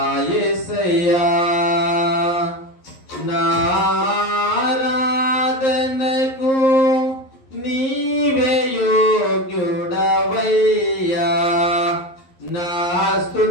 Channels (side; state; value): right; late; 11 ms